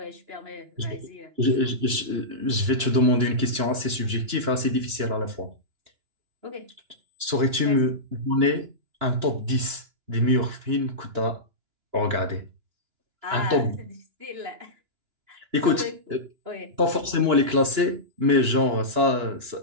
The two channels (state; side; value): late; left; 2.9 ms